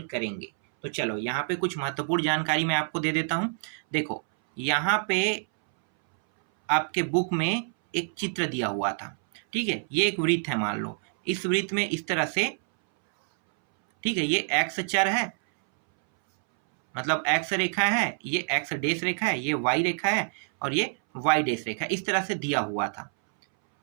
करेंगे। तो चलो यहाँ पे कुछ महत्वपूर्ण जानकारी मैं आपको दे देता हूँ। देखो, यहाँ पे आपके बुक में एक चित्र दिया हुआ था, ठीक है। ये एक वृत्त है, मान लो इस वृत्त में इस तरह से, ठीक है, ये एक्स चर है, मतलब एक्स रेखा है, ये एक्स डेश रेखा है, ये वाई रेखा है और ये वाई डेश रेखा, इस तरह से दिया हुआ था,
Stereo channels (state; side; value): silent; left; 60 dB below the other